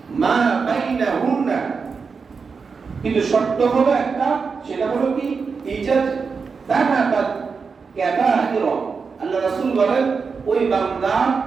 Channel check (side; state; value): left; quieter; 5.2 dB